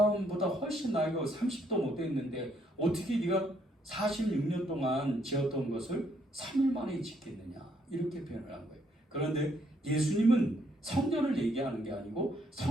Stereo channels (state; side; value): normal; both; correlation 0.71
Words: 훨씬 나이가 30도 못 됐는데 어떻게 네가 46년 동안 지었던 것을 3일 만에 짓겠느냐. 이렇게 표현을 한 거예요. 그런데 예수님은 성전을 얘기하는 게 아니고